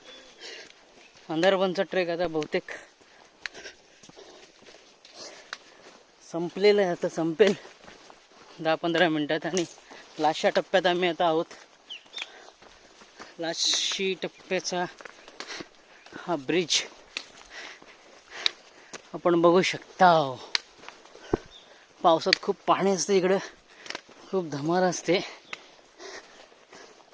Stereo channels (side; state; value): both; identical; correlation 1.00